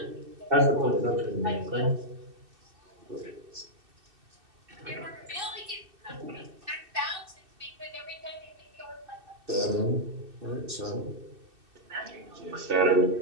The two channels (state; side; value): late; left; 2.6 ms